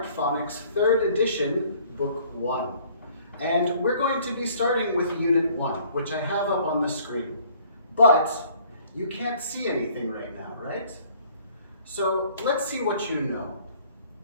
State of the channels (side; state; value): both; inverted; correlation -0.57